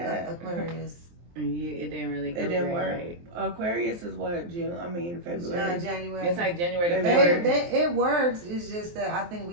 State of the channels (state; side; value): late; left; 23 ms